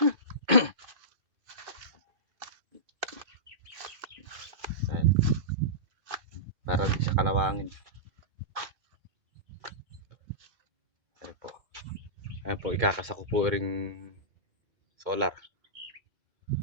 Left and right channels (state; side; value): late; left; 2.2 ms